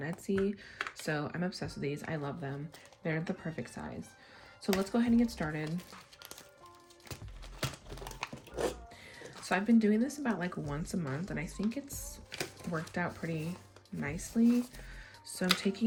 so I'm obsessed with these. I love them. They're the perfect size. So let's go ahead and get started. So I've been doing this about like once a month, and I think it's worked out pretty nicely. So I'm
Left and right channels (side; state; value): both; identical; correlation 1.00